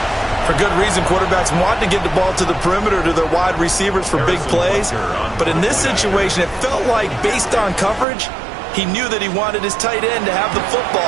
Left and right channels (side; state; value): left; drops out; at 8.1 s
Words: For good reason, quarterbacks want to get the ball to the perimeter to their wide receivers for big plays. But in this situation, it felt like, based on coverage, he knew that he wanted his tight end to have the